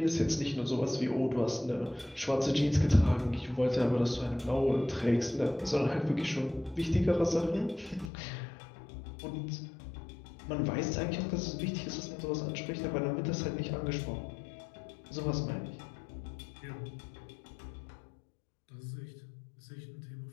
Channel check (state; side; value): drops out; right; at 8.1 s